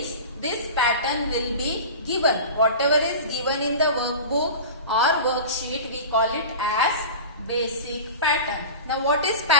this pattern will be given. Whatever is given in the workbook or worksheet, we call it as basic pattern. Now what is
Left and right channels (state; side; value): inverted; both; correlation -0.32